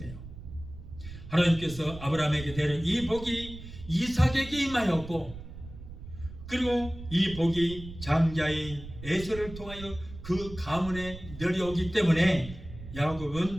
하나님께서 아브라함에게 대는 이 복이 이삭에게 임하였고, 그리고 이 복이 장자인 에서를 통하여 그 가문에 내려오기 때문에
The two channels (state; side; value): noise; right; rumble, 13 dB below the sound